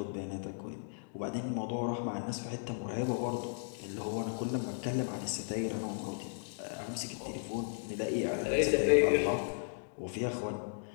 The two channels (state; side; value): silent; right; digital silence